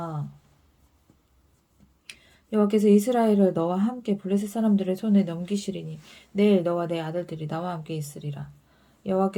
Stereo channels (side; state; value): both; identical; correlation 1.00